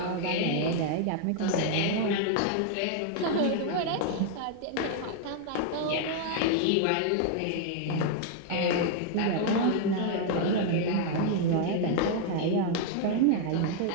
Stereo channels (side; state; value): both; different; correlation 0.00